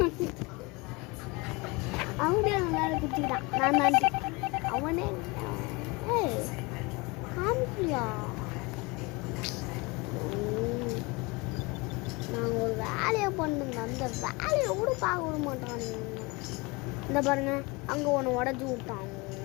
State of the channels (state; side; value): quieter; right; 26.1 dB